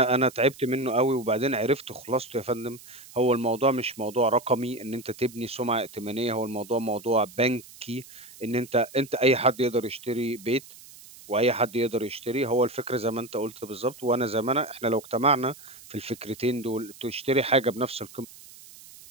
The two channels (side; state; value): right; noise; hiss, 20 dB below the sound